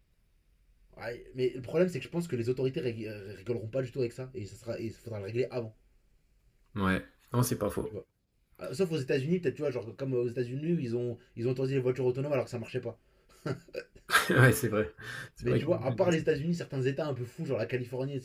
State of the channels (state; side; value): identical; both; correlation 1.00